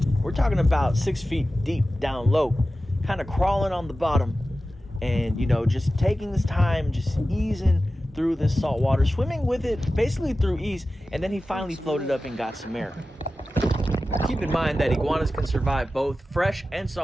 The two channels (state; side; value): normal; both; correlation 0.94